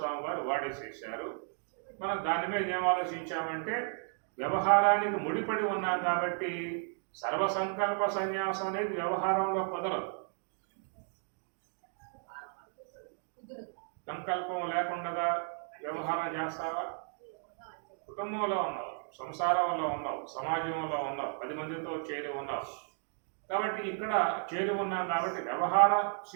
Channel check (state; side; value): silent; left; 55 dB below the other